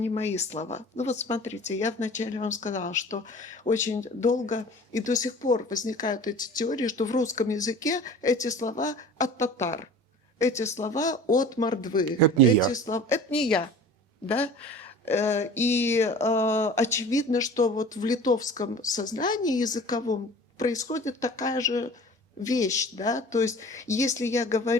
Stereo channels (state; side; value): normal; both; correlation 0.42